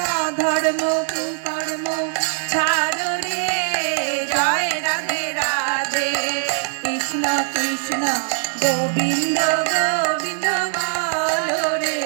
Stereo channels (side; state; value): left; silent; 60 dB below the other